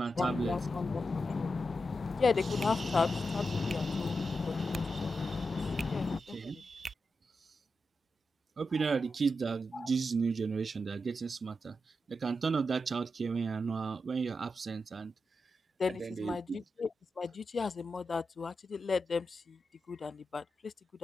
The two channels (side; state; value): both; normal; correlation 0.87